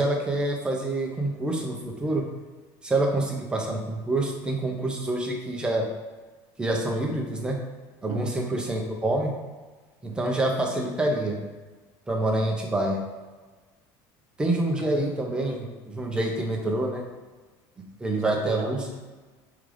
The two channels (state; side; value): normal; both; correlation 0.65